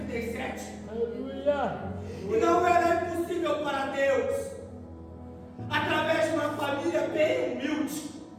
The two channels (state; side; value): identical; both; correlation 1.00